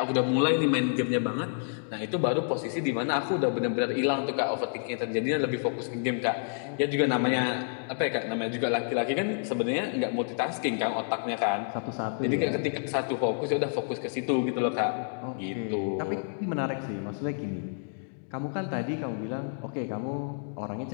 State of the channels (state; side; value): silent; right; digital silence